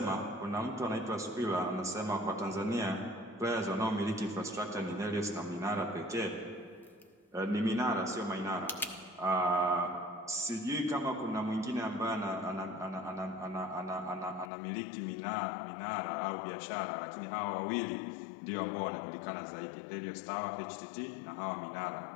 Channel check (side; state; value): right; drops out; at 14.5 s